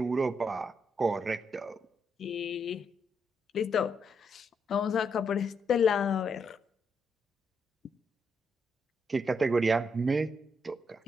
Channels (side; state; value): both; normal; correlation 0.79